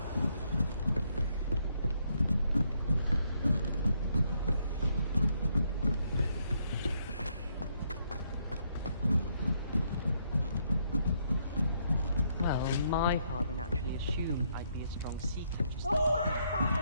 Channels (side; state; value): both; inverted; correlation -0.73